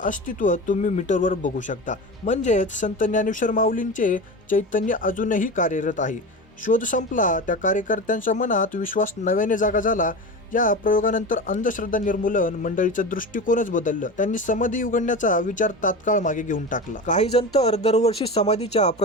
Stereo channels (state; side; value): normal; both; correlation 0.27